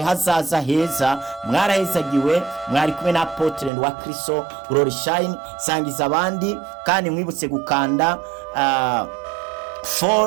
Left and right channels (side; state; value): left; drops out; at 3.7 s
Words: hazaza heza. Mwarahezagiwe, mwari kumwe na Apotre wa Kristo Glory Shine. Sangiza abandi, kandi mwibutse gukanda